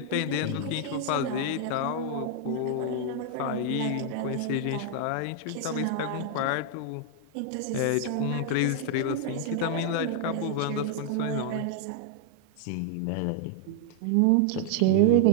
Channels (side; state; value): both; different; correlation 0.00